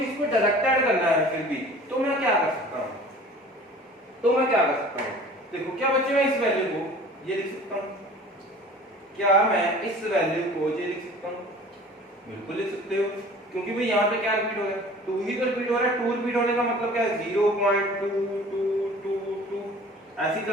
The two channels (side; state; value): both; normal; correlation 0.45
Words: इसको डायरेक्ट ऐड करना है फिर भी तो मैं क्या कर सकता हूँ, देखो क्या बच्चे मैं इस वैल्यू को ये लिख सकता हूँ, क्या मैं इस वैल्यू को ये लिख सकता हूँ, बिल्कुल लिख सकते हो, क्योंकि भाई यहाँ पे क्या रिपीट हो रहा है, 2 ही तो रिपीट हो रहा है। 2 रिपीट होने का मतलब क्या है, 0.222 ऐसे ही